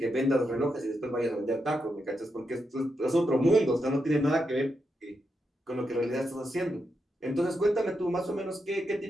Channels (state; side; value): normal; both; correlation 0.84